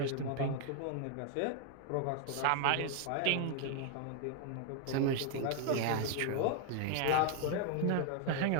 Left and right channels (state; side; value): different; both; correlation 0.00